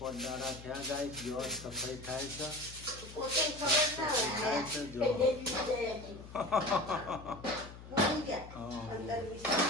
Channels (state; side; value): noise; left; hum, 15 dB below the sound